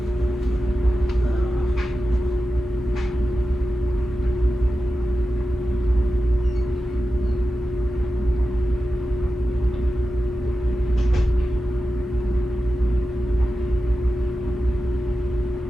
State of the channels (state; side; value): normal; both; correlation 0.93